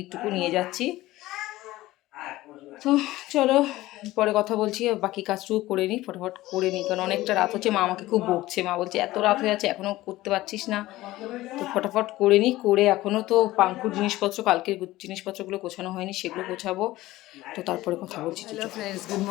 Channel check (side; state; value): right; quieter; 17.1 dB